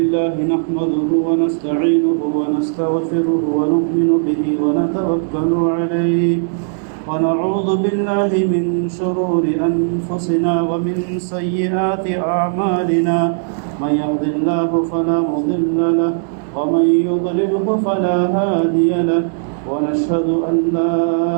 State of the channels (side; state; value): left; silent; 68 dB below the other